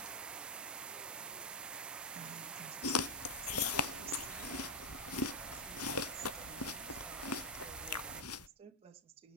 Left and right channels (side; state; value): both; normal; correlation -0.03